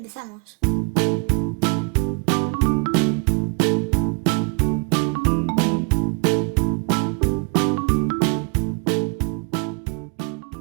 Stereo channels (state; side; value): quieter; left; 35.8 dB